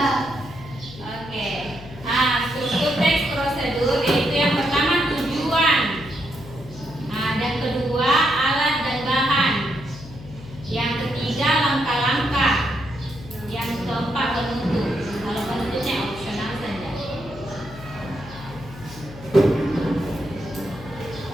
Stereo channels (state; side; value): noise; left; hum, 16 dB below the sound